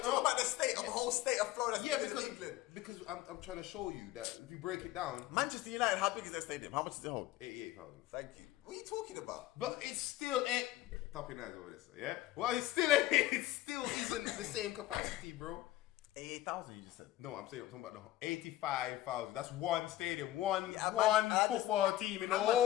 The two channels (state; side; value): quieter; right; 15.1 dB